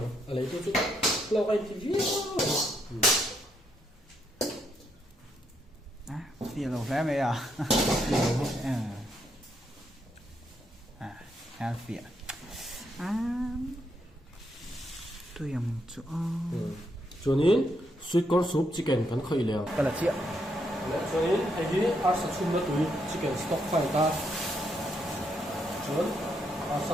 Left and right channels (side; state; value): both; normal; correlation 0.77